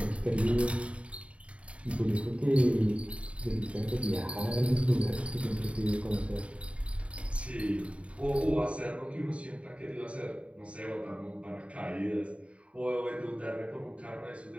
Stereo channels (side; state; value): left; late; 0.062 ms